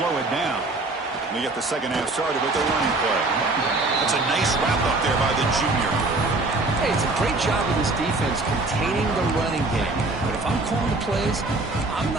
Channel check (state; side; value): quieter; left; 3.2 dB